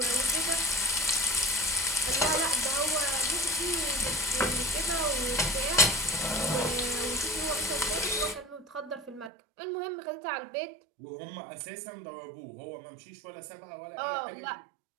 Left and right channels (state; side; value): drops out; left; at 9.3 s